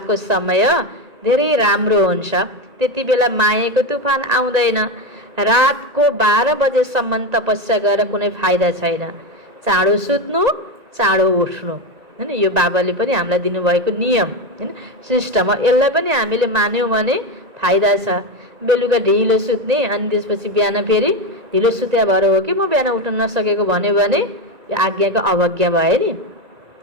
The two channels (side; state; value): left; late; 1.9 ms